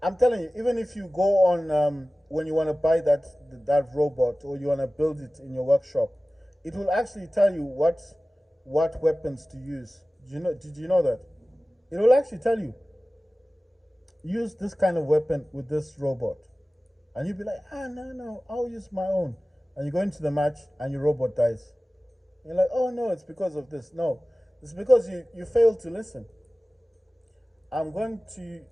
I'm telling you, even if you go on when you want to buy that robot or you want to build it in your workshop, it will actually tell you what weapons to use. Did you know that? It will actually tell you use this kind of weapon with this robot. And you'd be like, no, I'll use my own. And you go into the match and your robot dies. And you're like, oh no, it's because of this. No, it's because you failed to listen. I'm going to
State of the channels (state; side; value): normal; both; correlation 0.97